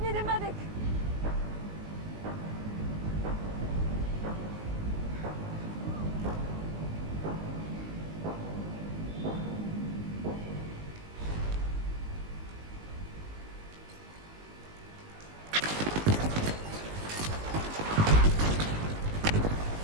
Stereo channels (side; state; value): left; late; 19 ms